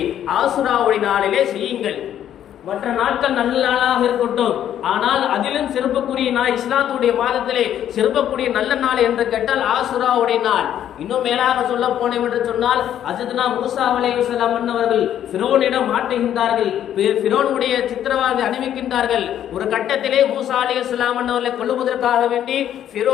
ஆசுராவுடைய நாளிலே செய்யுங்கள். மற்ற நாட்கள் நல்ல நாளாக இருக்கட்டும், ஆனால் அதிலும் சிறப்புக்குரிய நாள் இஸ்லாத்துடைய மாதத்திலே சிறப்புக்குரிய நல்ல நாள் என்று கேட்டால் ஆசுராவுடைய நாள். இன்னும் மேலாக சொல்ல போனோம் என்று சொன்னால் ஹஜ்ரத்னா மூசா அலைஹிஸ்ஸலாம் அவர்கள் ஃபிரௌனிடம் மாட்டுகின்றார்கள். ஃபிரௌனுடைய சித்திரவாதை அணிவிக்கின்றார்கள். ஒரு கட்டத்திலே மூசா அலைஹிஸ்ஸலாம் அவர்களை கொல்லுவதற்காக வேண்டி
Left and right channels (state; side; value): quieter; right; 10.6 dB